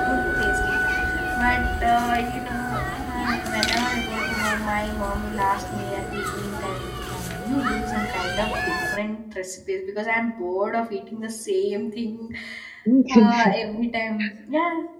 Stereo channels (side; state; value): both; identical; correlation 1.00